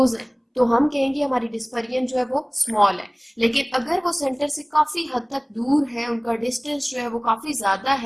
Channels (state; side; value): identical; both; correlation 1.00